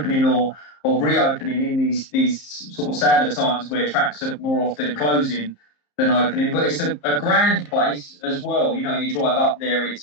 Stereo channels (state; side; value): late; right; 34 ms